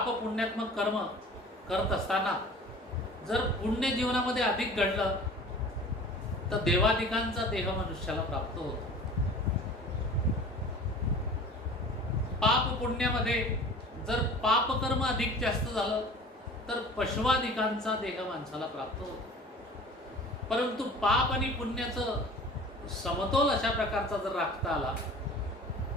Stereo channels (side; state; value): both; normal; correlation 0.43